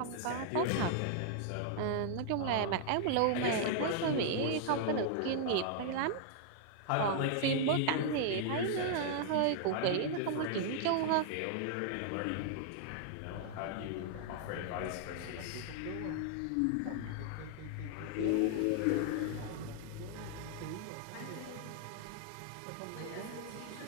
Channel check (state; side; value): different; both; correlation -0.01